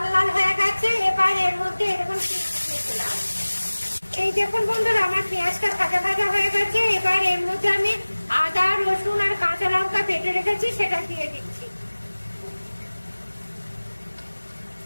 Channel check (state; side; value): inverted; both; correlation -1.00